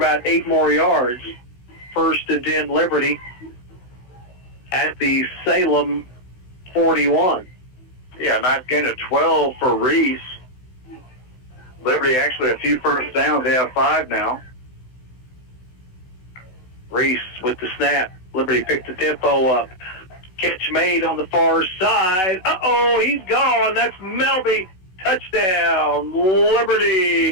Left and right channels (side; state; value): right; late; 16 ms